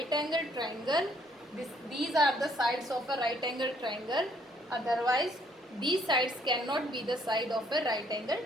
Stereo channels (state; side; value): normal; both; correlation 0.66